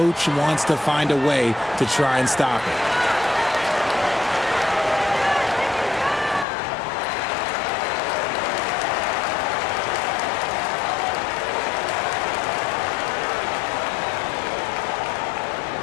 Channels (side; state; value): right; drops out; at 6.5 s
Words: wants to find a way to try and stop it.